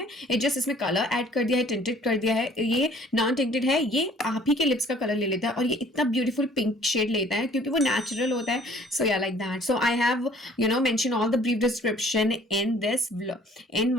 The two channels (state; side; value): normal; both; correlation 0.55